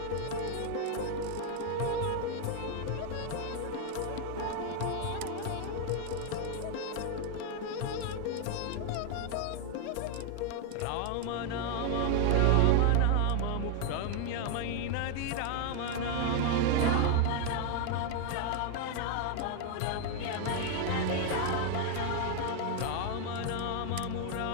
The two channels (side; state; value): both; different; correlation 0.00